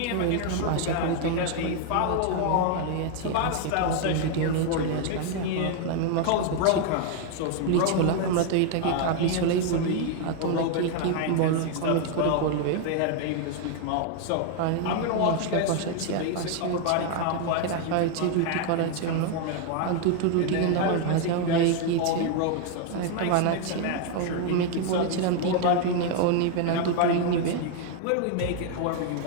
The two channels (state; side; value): different; both; correlation 0.00